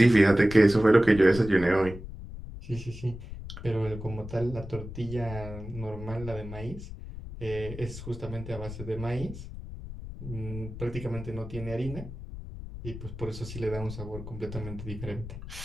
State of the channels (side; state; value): left; noise; rumble, 11 dB below the sound